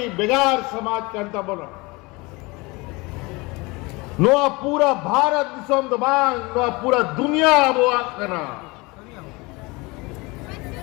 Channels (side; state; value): right; quieter; 24.8 dB